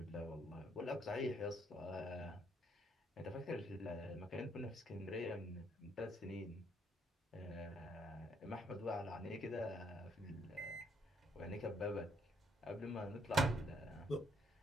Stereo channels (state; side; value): normal; both; correlation 0.71